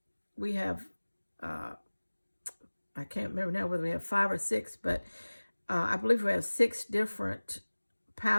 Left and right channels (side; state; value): both; inverted; correlation -1.00